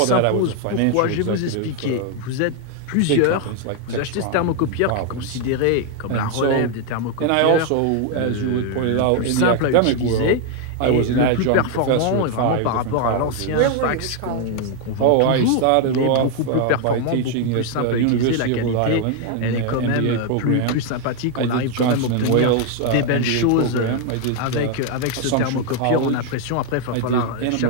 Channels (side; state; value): both; different; correlation 0.01